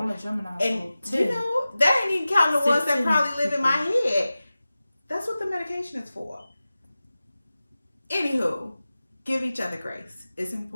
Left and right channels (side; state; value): both; inverted; correlation -0.96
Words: I'm a Gemini, and so 10. You know, that ain't even counting the ones that 16 probably live in my people. head. That's what the medication is for. Anywho, give each other grace. It's